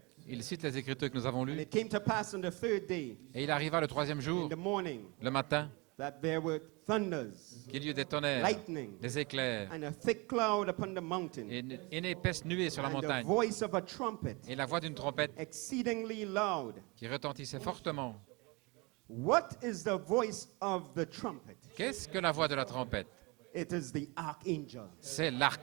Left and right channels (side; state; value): left; quieter; 27.3 dB